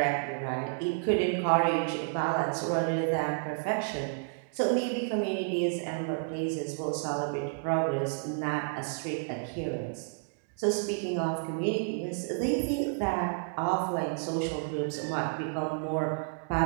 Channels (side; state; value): left; silent; digital silence